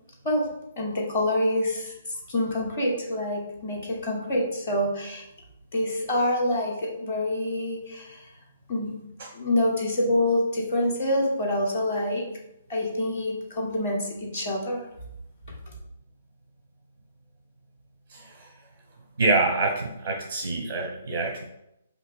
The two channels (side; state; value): both; inverted; correlation -0.65